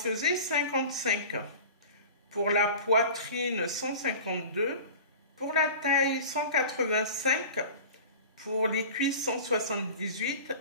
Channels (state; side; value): inverted; both; correlation -0.37